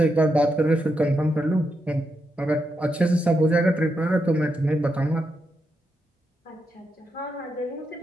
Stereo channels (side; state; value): both; normal; correlation 0.83